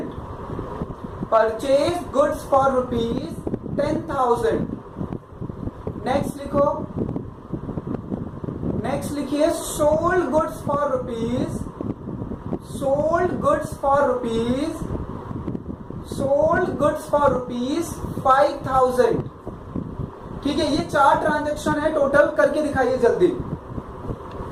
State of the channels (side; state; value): both; identical; correlation 1.00